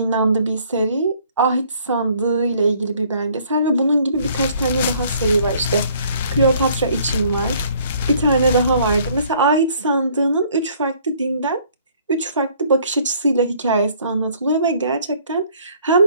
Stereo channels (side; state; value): both; inverted; correlation -0.60